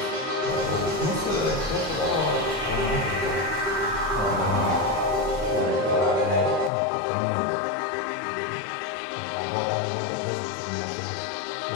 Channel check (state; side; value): drops out; right; at 6.7 s